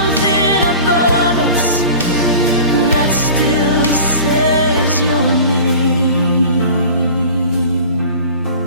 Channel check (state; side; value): inverted; both; correlation -0.40